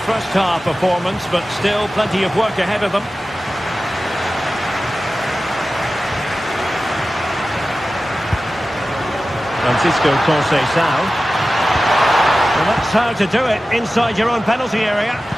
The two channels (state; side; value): normal; both; correlation 0.95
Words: half performance, but still plenty of work ahead of them. Francisco Conceição. And that's how to do it inside your own penalty area.